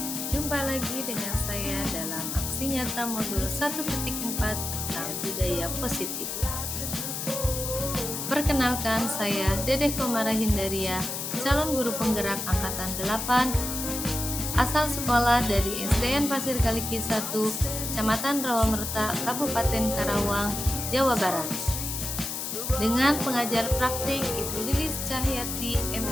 Jumpa lagi dengan saya dalam aksi nyata modul 1.4 tentang budaya positif. Perkenalkan, saya Dedeh Komara Hindaria, calon guru penggerak angkatan 8, asal sekolah dari SDN Pasir Kaliki 1, Kecamatan Rawamerta, Kabupaten Karawang, Jawa Barat. Dengan pengajar praktik Ibu Lilis Cahyati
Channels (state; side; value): noise; left; hiss, 4 dB below the sound